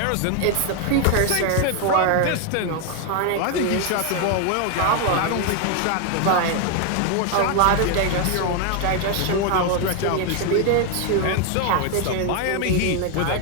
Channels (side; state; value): both; different; correlation 0.01